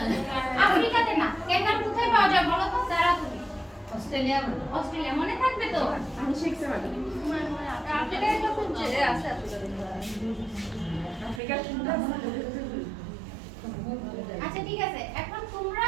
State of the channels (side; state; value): left; drops out; at 11.4 s